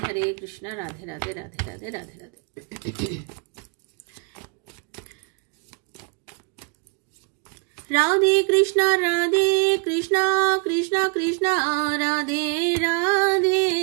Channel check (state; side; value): quieter; left; 33.6 dB